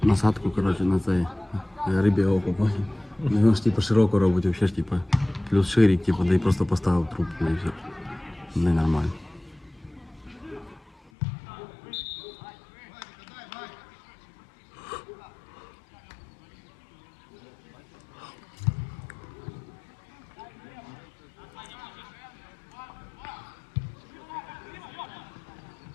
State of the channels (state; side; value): drops out; right; at 11.1 s